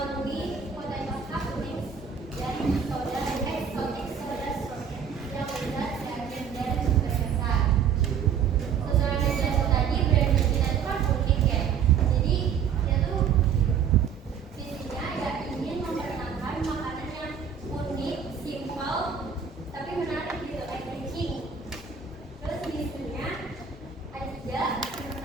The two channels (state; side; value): quieter; left; 7.2 dB